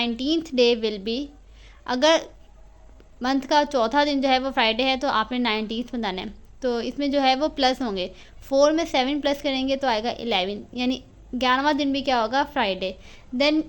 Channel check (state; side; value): identical; both; correlation 1.00